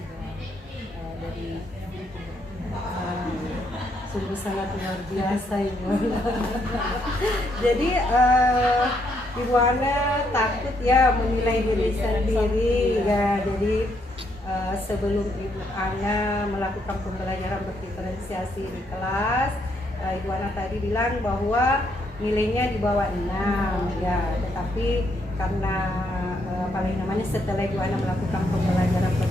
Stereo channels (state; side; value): normal; both; correlation 0.74